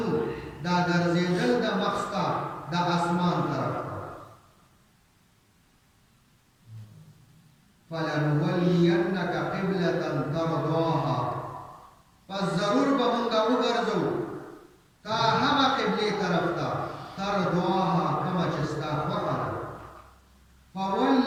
دا ګرځېدل د مخستا د اسمان طرف فلنولینک قبلة ترضاها پس ضرور به مونږ وګرځو تا هغه قبلې طرف ته ترضاها کومه چې ستا خوښه ده فول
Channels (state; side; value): identical; both; correlation 1.00